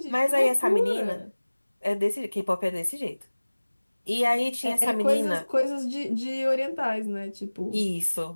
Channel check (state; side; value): inverted; both; correlation -1.00